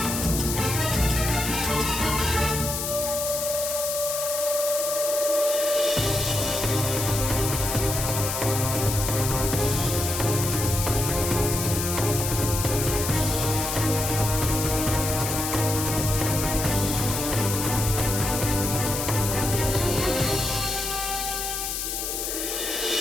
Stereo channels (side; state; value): left; noise; hiss, 3 dB below the sound